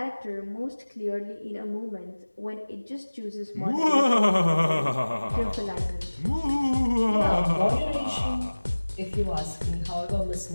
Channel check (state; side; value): inverted; both; correlation -1.00